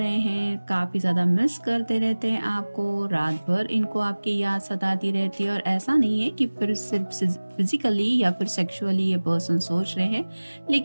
हैं, काफी ज्यादा मिस करते रहते हैं आपको, रात भर इनको आपकी याद सताती रहती है। और ऐसा नहीं है कि फिर सिर्फ फिजिकली या फिर सेक्सुअली ये पर्सन सोच रहे हैं,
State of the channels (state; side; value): inverted; both; correlation -1.00